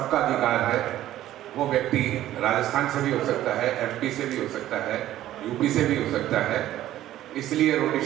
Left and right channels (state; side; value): quieter; left; 13.5 dB